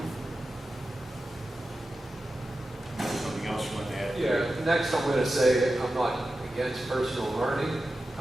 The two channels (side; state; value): both; normal; correlation 0.93